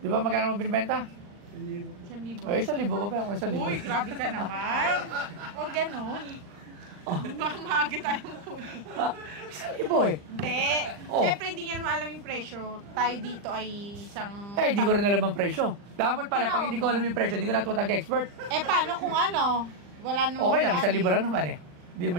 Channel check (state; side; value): late; left; 40 ms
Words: ba magkano mo binibenta? Hindi po. 1,000. Ay, 1,000 pa ba? 1,000. Uy, grabe ka naman. Huwag ganun. Baka maaga tayong kunin. 1,000 eh. Hindi. Oh. Siyempre, hindi niya naman alam yung presyo. Tayo dito ay isang... Eh, di ko rin alam ang presyo. Dapat pala, pag hindi ko alam yung presyo, hindi ko natuwa tag-expert. Paano kung ano? Wala nang... Okay lang, 1,000 lang naman eh. Hindi